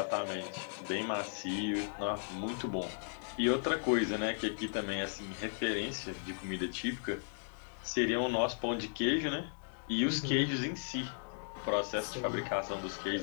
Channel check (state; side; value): silent; right; digital silence